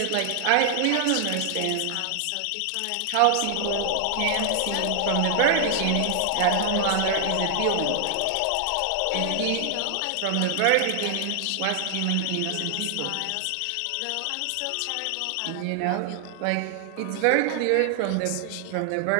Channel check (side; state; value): both; different; correlation 0.00